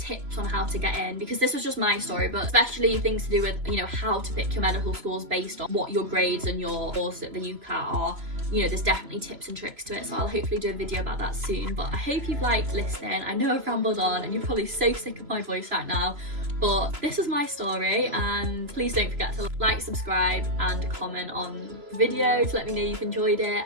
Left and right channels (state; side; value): late; left; 3.0 ms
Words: on how to get in, because this was just my story, but especially things to do with, you know, how to pick your medical schools based on what your grades and your course at the UCAT are. You know, there's definitely tips and tricks to it, so I'll hopefully do a video about that soon. But I hope you've liked listening. I know I've rambled on and you're probably so sick of my voice right now, but this is my story, and please don't forget to like, subscribe and comment on the video to let me know you've enjoyed it,